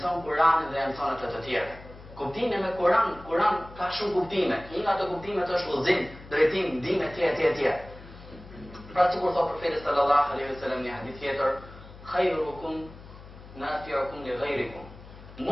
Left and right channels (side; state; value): left; noise; hum, 18 dB below the sound